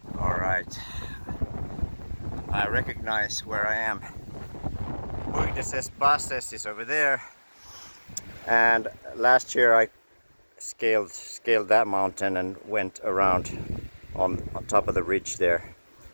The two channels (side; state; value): both; inverted; correlation -1.00